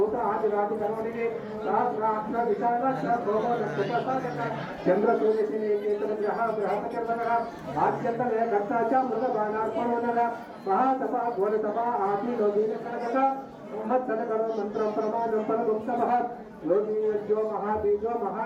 आदिरादिकर्मणि सहस्राक्ष विशालक्ष भोगोदस्तुपसादक चन्द्रसूर्यसेनेकेतनग्रह बृहत्कर्मणः आद्यन्तले कर्ता च मृगबाणार्पणोनः महातपः घोरतपः आदिलो दीनकर्मक मत्सनकरो मंत्रं प्रमाणं परगुप्तमः योगीयो महाबीजो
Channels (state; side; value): identical; both; correlation 1.00